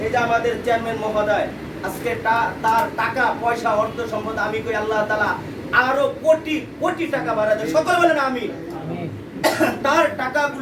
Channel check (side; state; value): both; identical; correlation 1.00